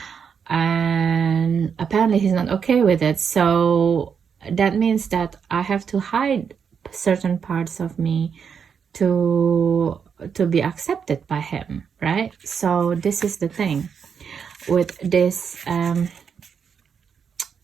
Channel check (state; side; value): quieter; left; 6.8 dB